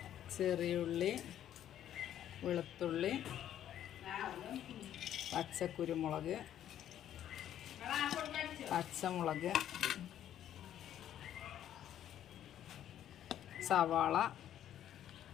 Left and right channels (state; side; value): quieter; right; 11.0 dB